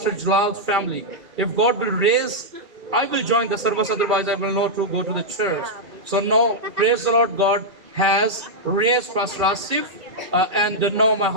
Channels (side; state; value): left; late; 2.7 ms